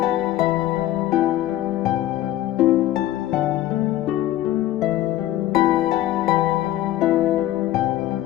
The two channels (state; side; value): quieter; right; 14.3 dB